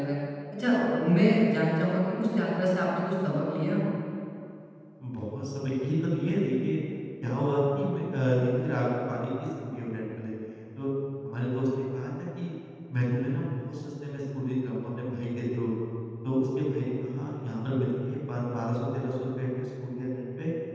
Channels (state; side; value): identical; both; correlation 1.00